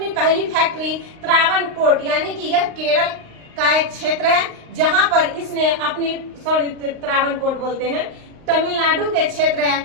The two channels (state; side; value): late; left; 38 ms